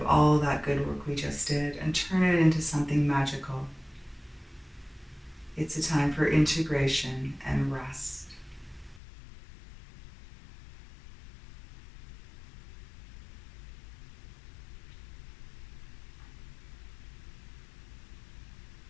all that good work we just did and turn it into something magical. It's a time for integration and rest.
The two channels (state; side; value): drops out; right; at 9.0 s